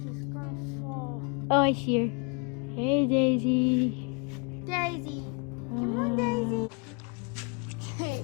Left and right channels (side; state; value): right; quieter; 34.6 dB